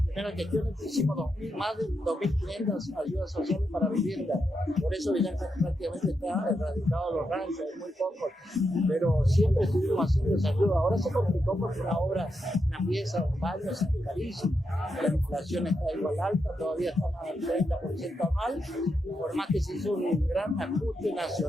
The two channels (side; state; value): both; normal; correlation 0.84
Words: primeras gestiones hicimos más de 2.500 ayudas sociales para vivienda. Por eso Villa Ángela prácticamente está erradicado de los ranchos, hay muy pocos, pero siempre estuvimos haciendo esa ayuda. Ahora se complicó porque una obra, una pieza, un baño, es carísimo. La inflación está igual alta, todavía estamos al 30% anual, por más que se hizo un gran ajuste